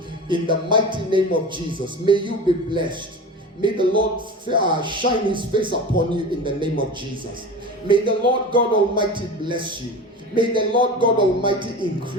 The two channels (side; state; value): both; normal; correlation 0.31